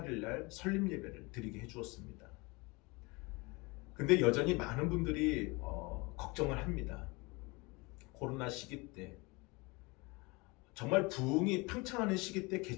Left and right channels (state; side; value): quieter; right; 26.1 dB